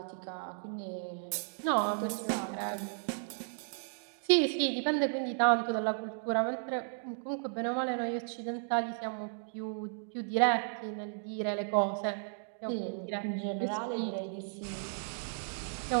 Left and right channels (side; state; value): left; silent; digital silence